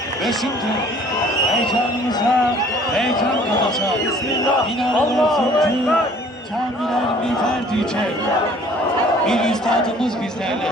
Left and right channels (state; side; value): normal; both; correlation 0.54